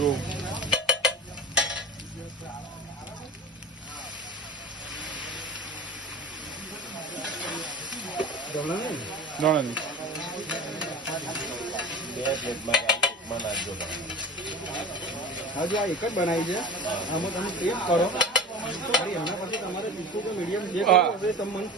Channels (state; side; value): normal; both; correlation 0.35